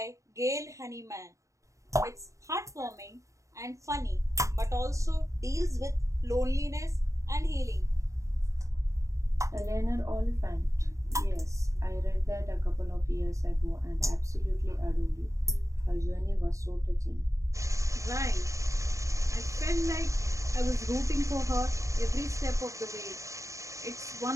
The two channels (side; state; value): left; late; 0.15 ms